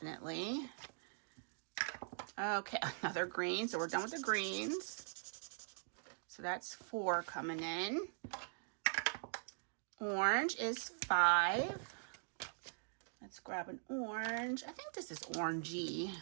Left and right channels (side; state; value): left; silent; digital silence